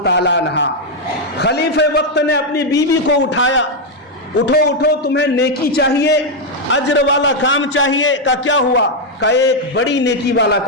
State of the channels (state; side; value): normal; both; correlation 0.01